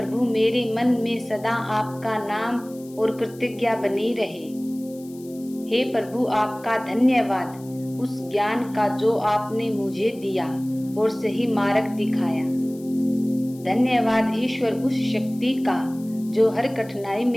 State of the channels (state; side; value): noise; left; hiss, 24 dB below the sound